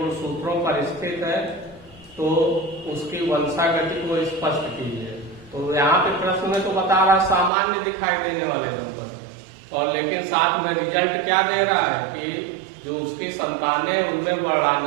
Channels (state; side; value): drops out; left; at 7.5 s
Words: पर स्थित है तो उसकी वंशागति को स्पष्ट कीजिए। तो यहाँ पे प्रश्न में तो बता रहा सामान्य दिखाई देने वाले दंपति, और लेकिन साथ में रिजल्ट क्या दे रहा है कि जो उसकी संतानें उनमें